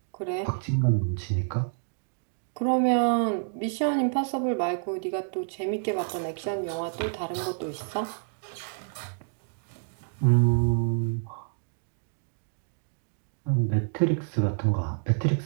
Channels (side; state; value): left; silent; digital silence